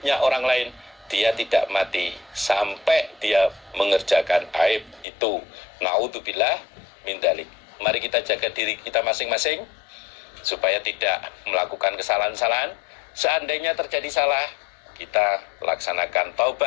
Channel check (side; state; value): right; drops out; at 5.1 s